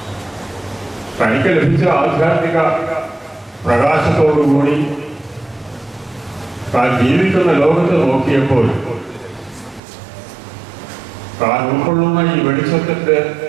തനിക്ക് ലഭിച്ച ആധ്യാത്മിക പ്രകാശത്തോടുകൂടി താൻ ജീവിക്കുന്ന ലോകത്ത് നോക്കിയപ്പോൾ താൻ ഉൾക്കൊള്ളുന്ന ഈ വെളിച്ചത്തിന്റെ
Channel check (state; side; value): drops out; left; at 9.8 s